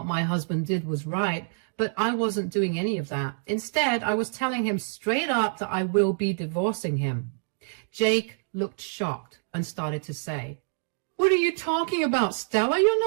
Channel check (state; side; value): silent; left; digital silence